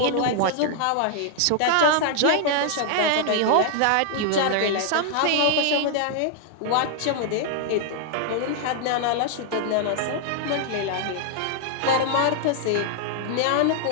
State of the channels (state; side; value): different; both; correlation -0.01